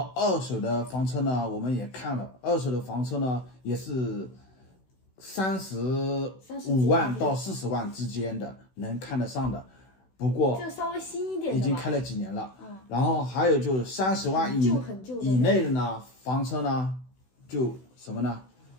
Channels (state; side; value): late; right; 16 ms